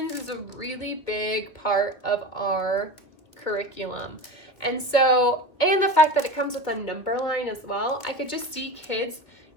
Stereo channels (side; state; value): right; late; 1.9 ms